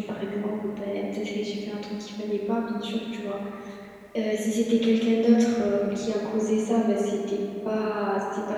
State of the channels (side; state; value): both; identical; correlation 1.00